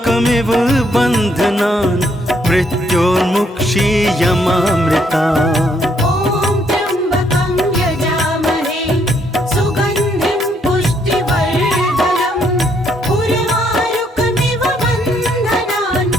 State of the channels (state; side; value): normal; both; correlation 0.71